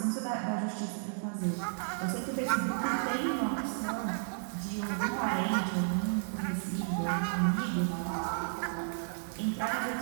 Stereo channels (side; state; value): left; silent; digital silence